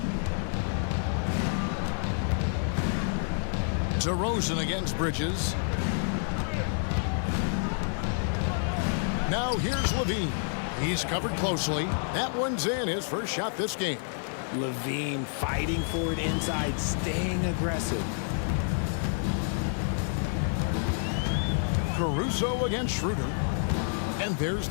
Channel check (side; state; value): right; silent; digital silence